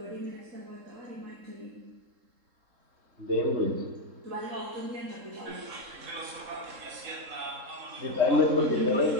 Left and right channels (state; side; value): late; left; 3.7 ms